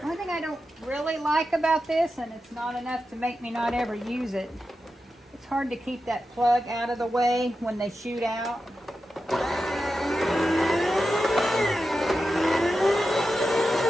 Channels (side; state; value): both; normal; correlation 0.90